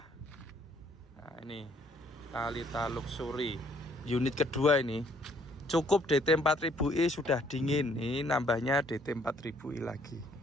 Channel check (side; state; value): both; normal; correlation 0.64